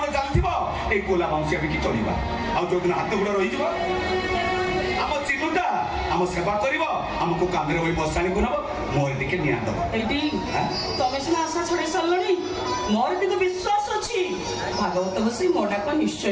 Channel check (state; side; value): identical; both; correlation 1.00